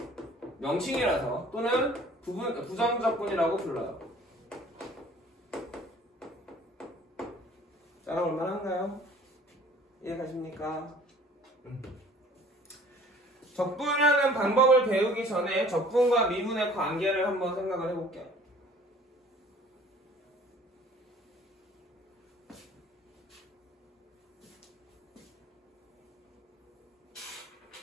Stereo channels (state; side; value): normal; both; correlation 0.52